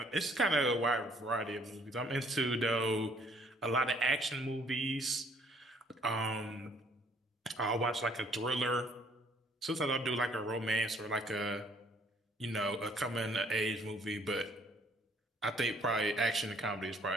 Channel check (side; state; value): both; normal; correlation 0.62